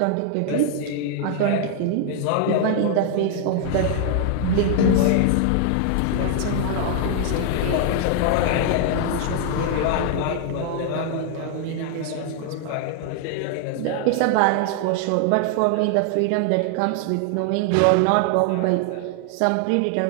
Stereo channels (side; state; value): both; different; correlation 0.00